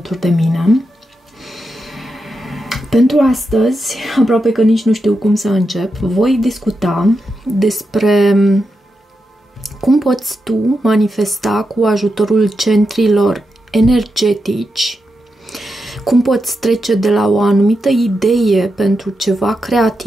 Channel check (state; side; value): normal; both; correlation 0.87